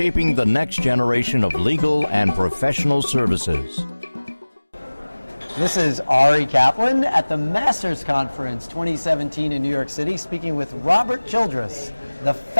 the next generation of legal and professional services. This is Ari Kaplan at the Masters Conference 2017 in New York City, speaking with Robert Childress, the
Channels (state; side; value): inverted; both; correlation -1.00